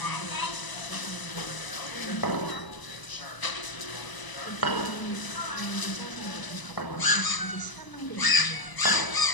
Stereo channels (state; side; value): late; right; 1.0 ms